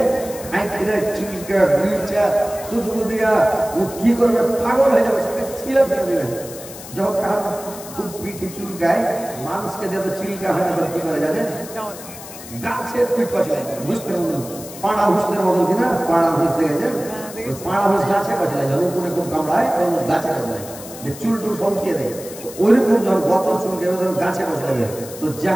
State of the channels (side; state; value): left; noise; hiss, 14 dB below the sound